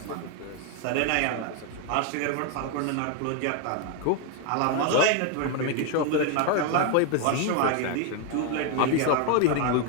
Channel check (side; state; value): both; different; correlation 0.01